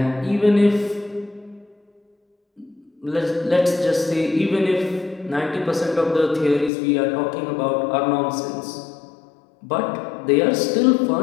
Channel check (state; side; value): drops out; right; at 6.7 s